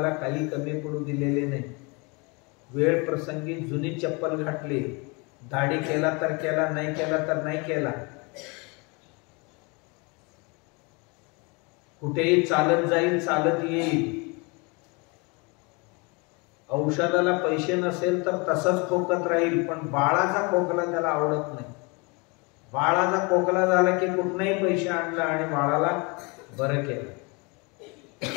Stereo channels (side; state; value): right; quieter; 29.3 dB